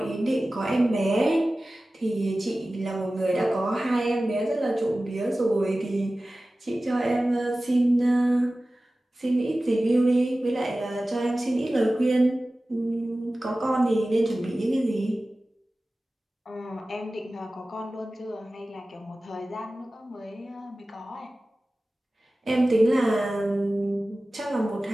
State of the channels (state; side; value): normal; both; correlation 0.96